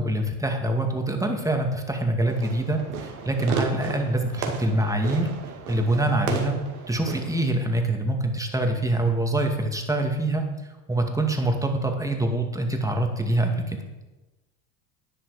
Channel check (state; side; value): normal; both; correlation 0.55